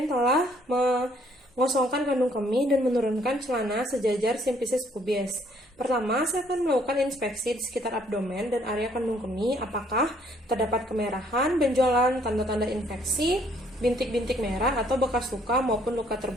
telah mengosongkan kandung kemih dan menurunkan celana sejajar simpisis pubis. Pertama, saya akan melakukan inspeksi di sekitar abdomen dan area kandung kemih, apakah terdapat kemerahan, benjolan, tanda-tanda infeksi, bintik-bintik merah atau bekas luka maupun luka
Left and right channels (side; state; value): both; normal; correlation 0.64